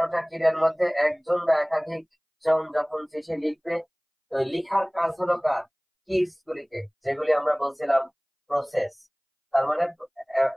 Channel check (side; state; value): both; identical; correlation 1.00